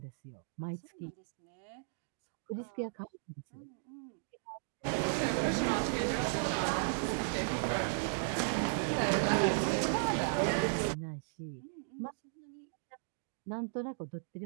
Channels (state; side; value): silent; left; digital silence